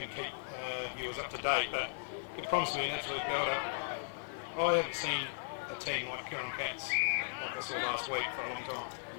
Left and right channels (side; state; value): right; silent; digital silence